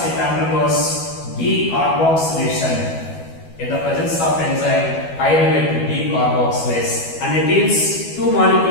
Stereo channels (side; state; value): right; late; 12 ms